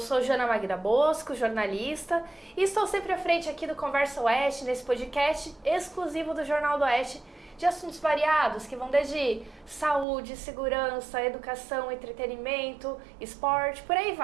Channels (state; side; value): drops out; left; at 10.1 s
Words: Joana Magda Bosco, jornalista, e estou sempre à frente aqui do Conversa Oeste, nesse podcast exclusivo do Jornal do Oeste, de assuntos variados, que vão desde saúde, segurança, educação, entretenimento, esporte, por aí